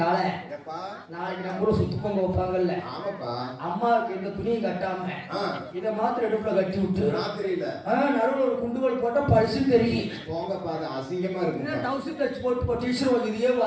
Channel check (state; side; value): identical; both; correlation 1.00